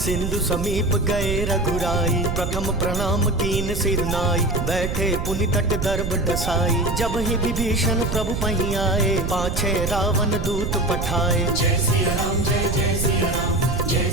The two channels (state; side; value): noise; right; rumble, 2 dB below the sound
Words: समीप गए रघुराई। प्रथम प्रणाम कीन सिर नाई, बैठे पुनि तट दर्भ डसाई। जब ही विभीषण प्रभु पही आए, पाछे रावण दूत पठाए। जय सिया राम जय जय सिया राम, जय